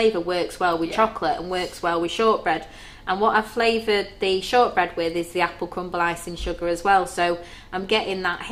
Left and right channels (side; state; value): both; identical; correlation 1.00